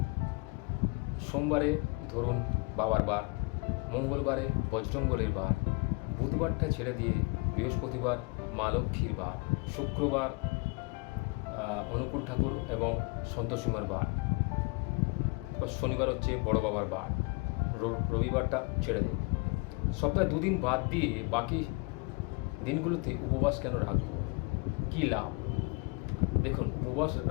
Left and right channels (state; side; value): quieter; right; 29.5 dB